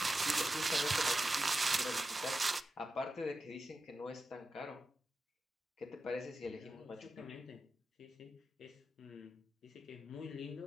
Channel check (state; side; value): normal; both; correlation 0.90